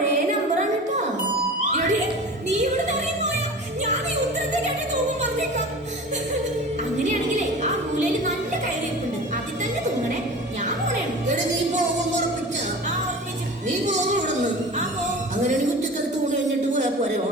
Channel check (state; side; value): normal; both; correlation 0.36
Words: നമ്പറാണ് കേട്ടോ. നീ ഇവിടെ അങ്ങനെയാണെങ്കിലേ ആ മൂലയില് നല്ല കയറിയിട്ടുണ്ട്, അതിൽ തന്നെ തൂങ്ങണേ. ഞാൻ പോണേണ്. നീ പോകും ഉറപ്പിച്ച? നീ പോകും ഇവിടുന്ന്. അങ്ങനെയാണെങ്കിൽ ഉച്ചക്കൽ തൂണ് കഴിഞ്ഞിട്ട് പോയാ പോരെ